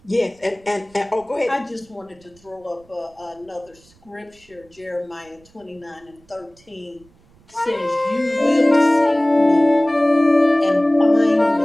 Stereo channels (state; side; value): noise; right; rumble, 30 dB below the sound